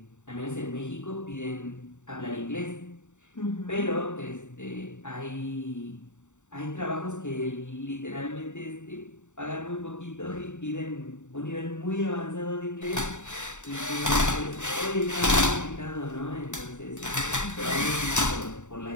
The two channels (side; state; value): right; late; 0.84 ms